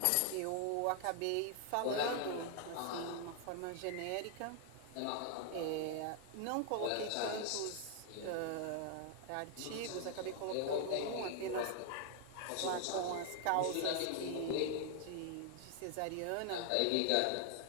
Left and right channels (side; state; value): both; different; correlation 0.00